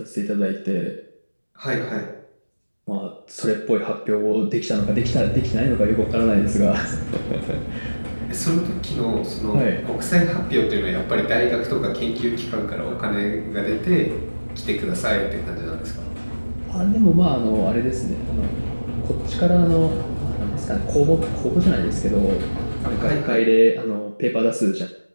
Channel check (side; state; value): both; inverted; correlation -1.00